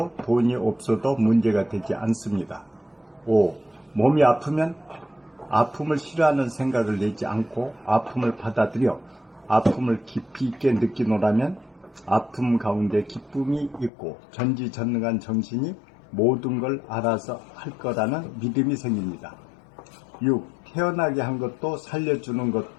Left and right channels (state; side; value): drops out; right; at 13.9 s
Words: 돈이 없어도 문제가 되지 않습니다. 5. 몸이 아프면 아픔을 싫어하는 생각을 내지 않고 아픔을 받아들여 아픔을 깊이 있게 느끼노라면 아픔 가운데 기쁨이 있고 전지전능한 정신이 모든 걸 알아서 할 거라는 믿음이 생깁니다. 6. 태어나게 한 것도 살려주는